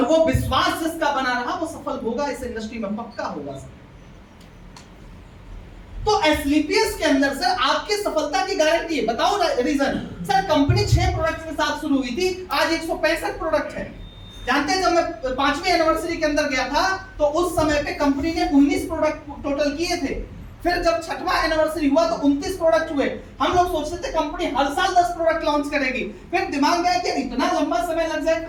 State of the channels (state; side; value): identical; both; correlation 1.00